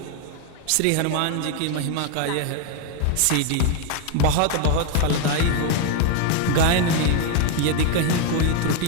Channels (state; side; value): different; both; correlation 0.01